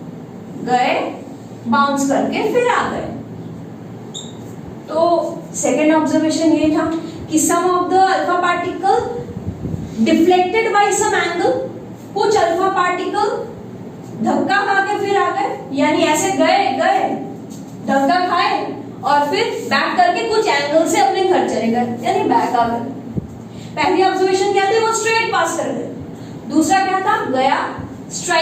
गए, बाउंस करके फिर आ गए। तो सेकेंड ऑब्जर्वेशन ये था कि some of the alpha particle deflected by some angle, कुछ अल्फा पार्टिकल धक्का खा के फिर आ गए, यानी ऐसे गए धक्का खाए और फिर बैक करके कुछ एंगल से अपने घर चले गए, यानी बैक आ गए। पहली ऑब्जर्वेशन क्या थी? वो स्ट्रेट पास कर गए। दूसरा क्या था? गया,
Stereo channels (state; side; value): identical; both; correlation 1.00